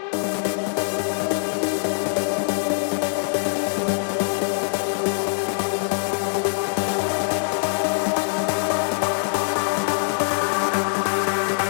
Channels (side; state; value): right; silent; digital silence